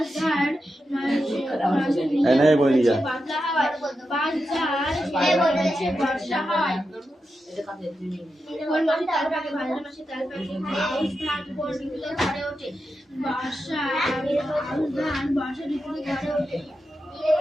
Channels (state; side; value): normal; both; correlation 0.89